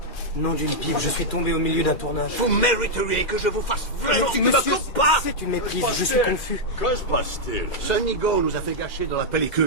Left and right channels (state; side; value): late; right; 2.3 ms